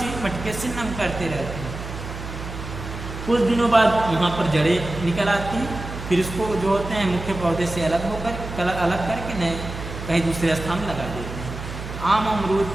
मटके से नम करते रहते हैं। कुछ दिनों बाद वहाँ पर जड़ें निकल आती हैं, फिर इसको जो होते हैं मुख्य पौधे से अलग करके नए कहीं दूसरे स्थान लगा देते हैं। आम अमरूद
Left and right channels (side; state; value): right; noise; hum, 9 dB below the sound